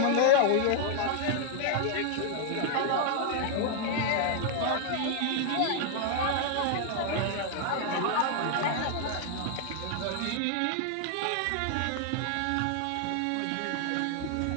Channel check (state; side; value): different; both; correlation 0.00